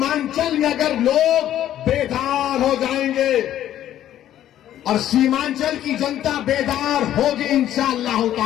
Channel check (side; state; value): right; quieter; 11.9 dB